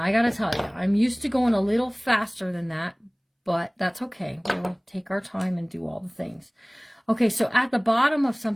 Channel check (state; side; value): identical; both; correlation 1.00